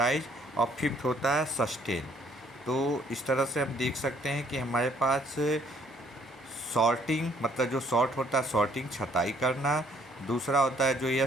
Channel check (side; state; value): both; normal; correlation 0.63